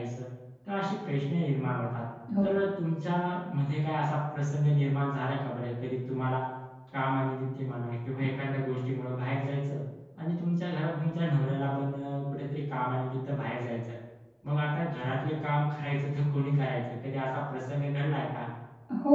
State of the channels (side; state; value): both; identical; correlation 1.00